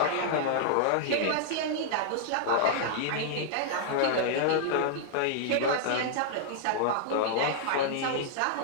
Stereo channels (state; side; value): different; both; correlation -0.01